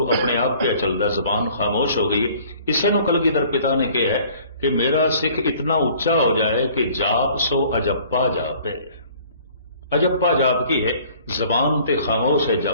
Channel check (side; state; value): both; inverted; correlation -0.54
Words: अपने आप पे चलता, जबान खामोश हो गई। इसे नूं कलगीधर पिता ने कहा है कि मेरा सिख इतना उच्चा हो जाए कि जाप सो अजप्पा जापे। अजप्पा जाप की है, जबान ते खामोश है,